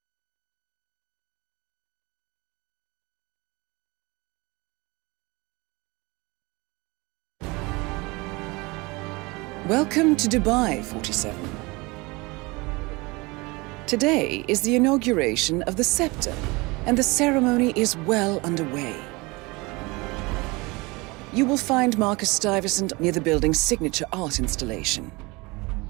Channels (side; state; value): left; quieter; 24.8 dB